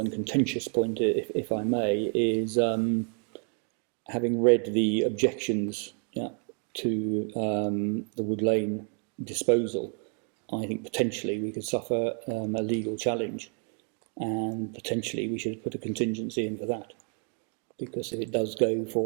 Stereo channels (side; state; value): left; quieter; 39.6 dB